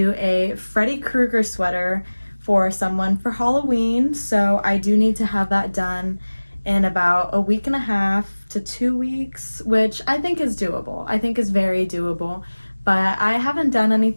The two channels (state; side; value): inverted; both; correlation -1.00